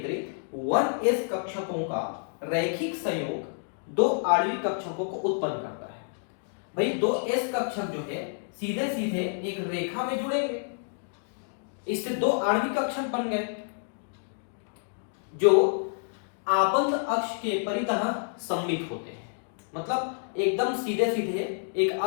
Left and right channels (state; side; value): silent; right; digital silence